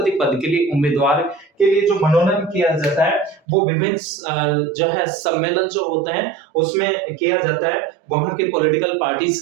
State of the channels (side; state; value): left; drops out; at 3.4 s